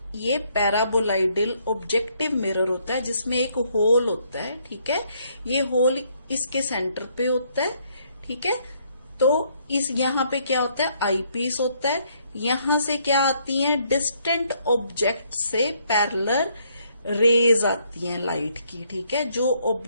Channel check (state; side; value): inverted; both; correlation -0.69